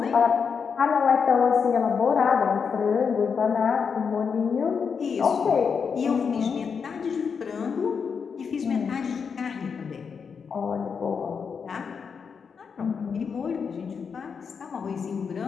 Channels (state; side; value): quieter; right; 6.1 dB